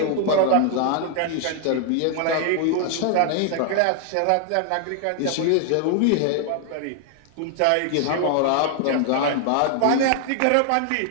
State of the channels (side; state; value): both; different; correlation 0.00